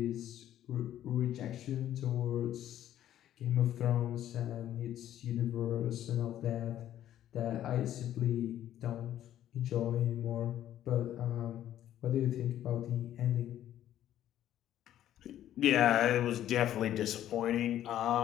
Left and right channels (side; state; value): right; quieter; 11.9 dB